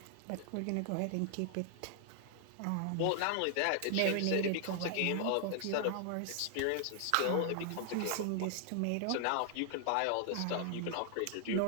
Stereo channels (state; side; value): different; both; correlation 0.00